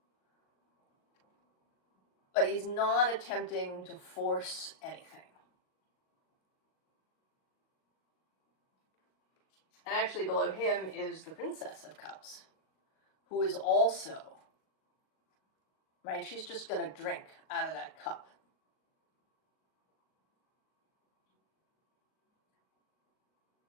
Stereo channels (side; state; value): right; late; 38 ms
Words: but he's not attempting to force anything. And actually below him is the Princess of Cups, who is also, right, she's just going to drink out of that cup.